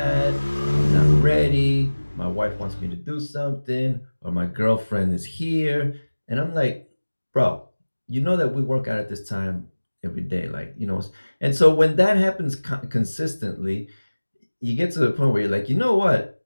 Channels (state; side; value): inverted; both; correlation -1.00